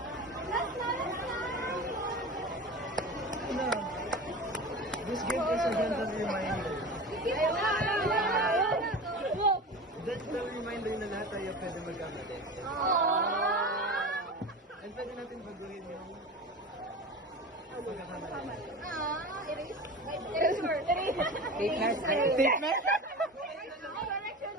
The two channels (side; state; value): both; normal; correlation 0.30